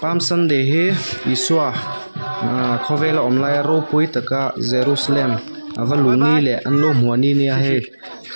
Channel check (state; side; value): inverted; both; correlation -1.00